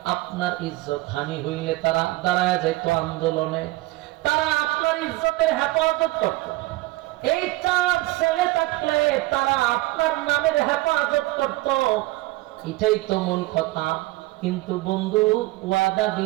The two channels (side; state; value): left; quieter; 19.8 dB